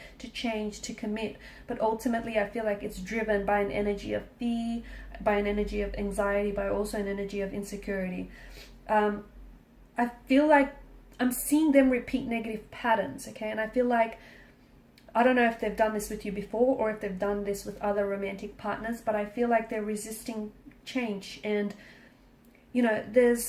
to change, to commit. But ultimately, I feel like it's driven by an energy of fear, by an energy of anxiety, by also an energy of insecurity. I feel like I'm seeing them repeat negative patterns, okay? And I feel like, I don't know if they've done this with you before or if they've done this with other romantic partners, but I feel like they're resisting change. And, you know,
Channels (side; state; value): both; identical; correlation 1.00